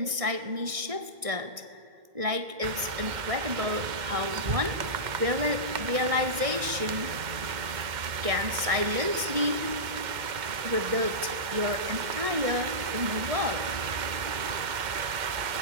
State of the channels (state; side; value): late; left; 1.6 ms